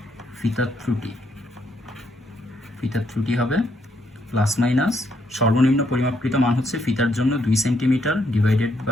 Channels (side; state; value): both; normal; correlation 0.75